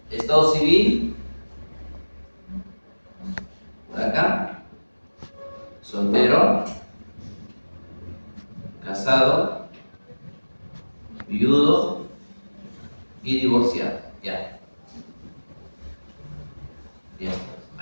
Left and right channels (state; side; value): inverted; both; correlation -1.00